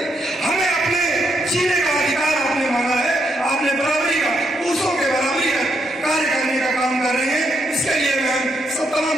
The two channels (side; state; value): both; normal; correlation 0.78